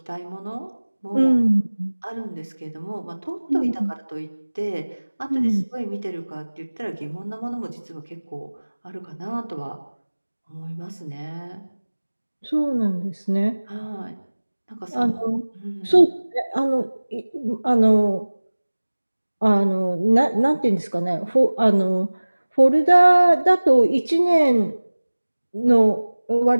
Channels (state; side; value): inverted; both; correlation -1.00